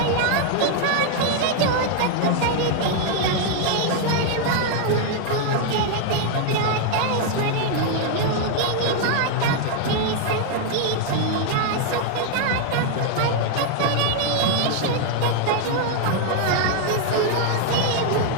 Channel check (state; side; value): different; both; correlation 0.00